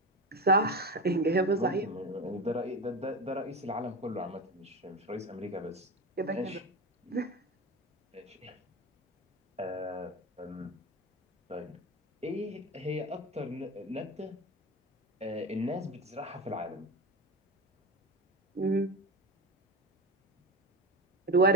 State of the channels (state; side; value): normal; both; correlation 0.22